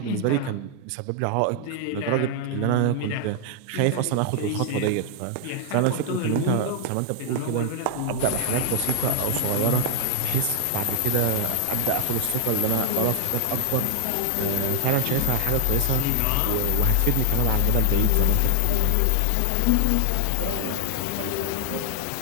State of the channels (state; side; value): different; both; correlation 0.00